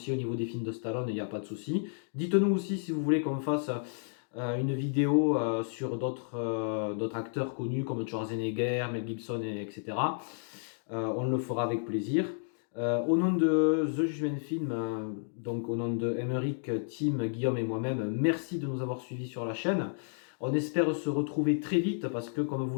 au niveau des films de Stallone, il n'y a pas de souci. Dites-nous aussi si vous voulez qu'on fasse une vidéo sur d'autres acteurs connus comme Schwarzenegger, Mel Gibson, etc. On le fera avec plaisir. Au nom de The Judgment Film, donc au nom de Emeric, Tim, Guillaume et moi-même, merci de nous avoir suivis sur la chaîne. On espère se retrouver très vite parce que, comme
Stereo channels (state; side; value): silent; right; digital silence